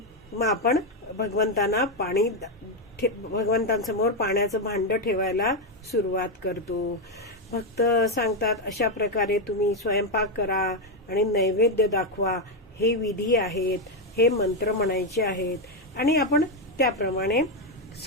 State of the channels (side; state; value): both; normal; correlation 0.05